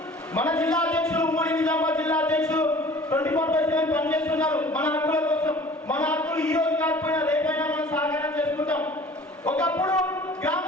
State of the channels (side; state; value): both; normal; correlation 0.47